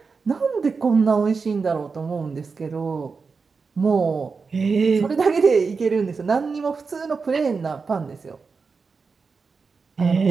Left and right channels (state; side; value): quieter; left; 4.9 dB